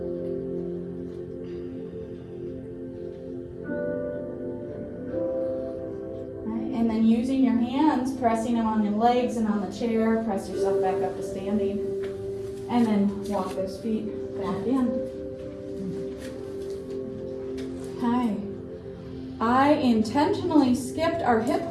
Right, and then using your hands, pressing them on your legs and on the chair, press yourself back up to standing. And then walk those feet back in. Okay. I intentionally skipped our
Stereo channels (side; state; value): both; identical; correlation 1.00